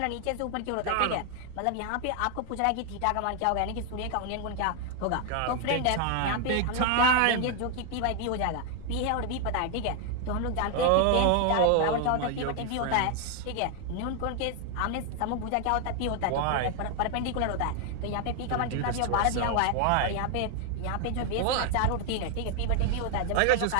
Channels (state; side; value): different; both; correlation 0.01